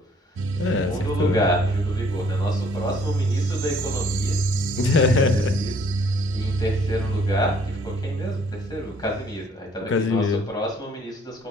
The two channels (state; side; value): normal; both; correlation 0.61